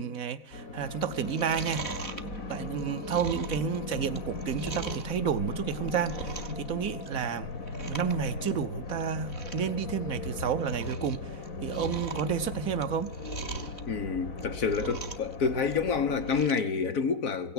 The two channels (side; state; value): right; late; 4.0 ms